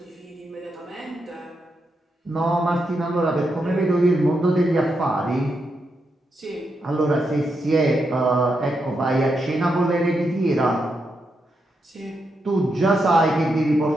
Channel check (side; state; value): both; normal; correlation 0.83